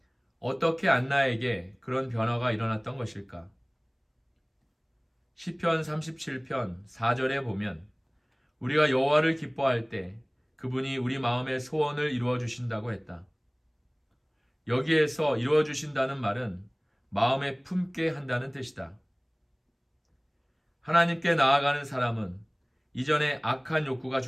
어떻게 안나에게 그런 변화가 일어났던 것일까? 시편 37편 4절에 보면 우리가 여호와를 기뻐할 때 그분이 우리 마음의 소원을 이루어 주신다고 했다. 여기에서 이루어 주신다는 말은 마음에 품게 한다는 뜻이다. 하나님께 나아가는 사람은 이전에 악한 욕구가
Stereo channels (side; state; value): both; identical; correlation 1.00